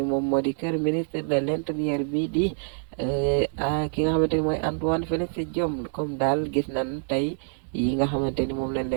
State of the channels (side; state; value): left; silent; digital silence